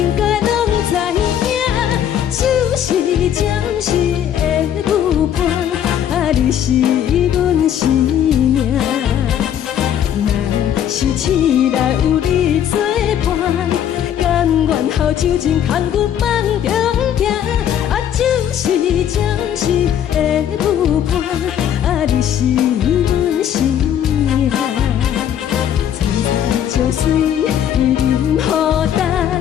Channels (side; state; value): right; quieter; 9.9 dB